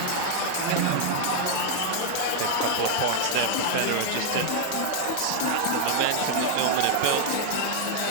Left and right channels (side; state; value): both; different; correlation 0.00